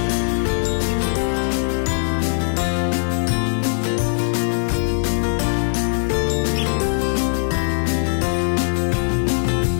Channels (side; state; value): right; silent; digital silence